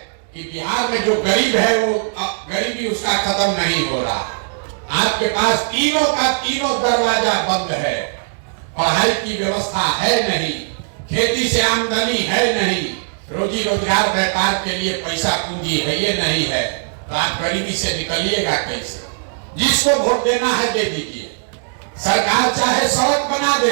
कि बिहार में जो गरीब है वो गरीबी उसका खत्म नहीं हो रहा। आपके पास तीनों का तीनों दरवाजा बंद है। पढ़ाई की व्यवस्था है नहीं, खेती से आमदनी है नहीं, रोजी रोजगार व्यापार के लिए पैसा पूंजी है ये नहीं है, तो आप गरीबी से निकलिएगा कैसे? जिसको वोट देना है दे दीजिए। सरकार चाहे सड़क बना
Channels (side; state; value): left; silent; digital silence